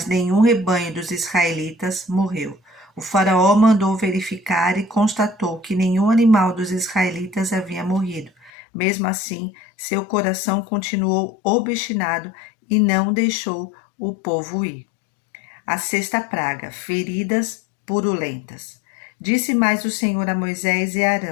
nenhum rebanho dos israelitas morreu. O faraó mandou verificar e constatou que nenhum animal dos israelitas havia morrido. Mesmo assim, seu coração continuou obstinado e não deixou o povo ir. A sexta praga, feridas purulentas. Disse mais o Senhor a Moisés e a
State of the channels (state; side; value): drops out; right; at 8.5 s